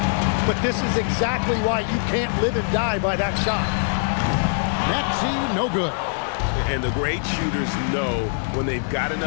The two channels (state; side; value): silent; right; 64 dB below the other